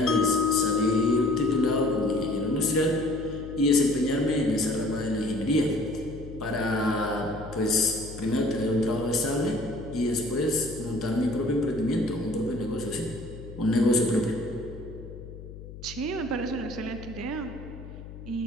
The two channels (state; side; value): noise; left; hum, 14 dB below the sound